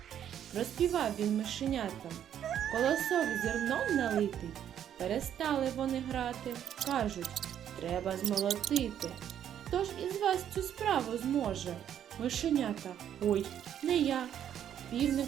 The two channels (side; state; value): left; quieter; 9.9 dB